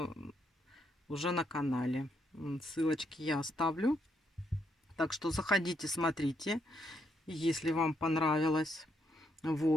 уже на канале. Ссылочки я оставлю. Так что заходите, смотрите, если вам понравилось.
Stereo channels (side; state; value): both; normal; correlation 0.76